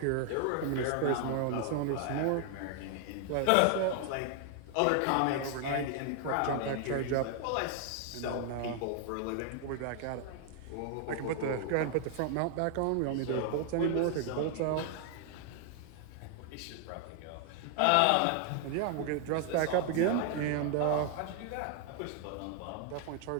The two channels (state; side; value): different; both; correlation 0.00